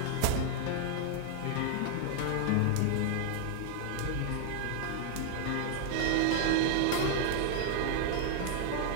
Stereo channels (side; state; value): both; different; correlation 0.00